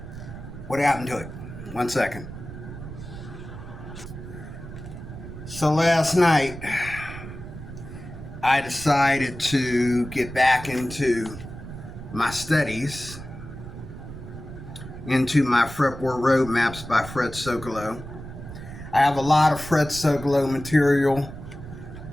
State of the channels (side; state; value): right; noise; rumble, 12 dB below the sound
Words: What happened to it? 1 second. So last night, I decided to get back into my studies, into my Repertoire roadmaps by Fred Sololow. I have a lot of Fred Sololow material.